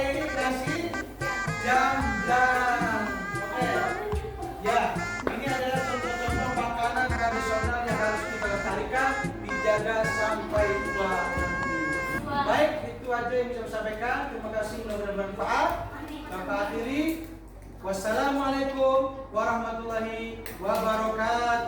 Nasi jamblang. Oke. Ya, ini adalah contoh-contoh makanan tradisional yang harus kita lestarikan, dijaga sampai tua nanti. Baik, itu aja yang bisa saya sampaikan. Terima kasih, mudah-mudahan bermanfaat. Bapak akhiri. Wassalamualaikum warahmatullahi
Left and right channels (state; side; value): identical; both; correlation 1.00